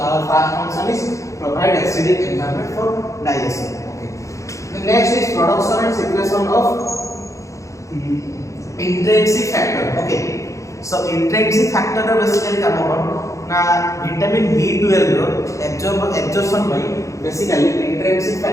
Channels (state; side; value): late; right; 0.15 ms